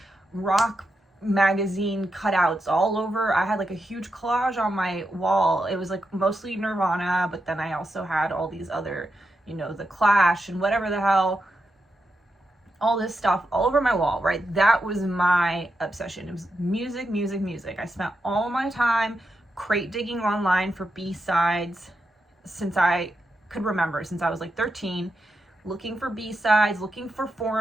rock magazine cutouts all over. I had like a huge collage on my wall. It was like mostly Nirvana, but then I also had all these other, The Clash and whatever the hell, all this stuff all over my wall, right? That was my obsession. It was music, music, music. I spent all my time crate digging online for B-sides since I could remember, since I was like 13, looking for B-sides, looking for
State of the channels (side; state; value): both; normal; correlation 0.86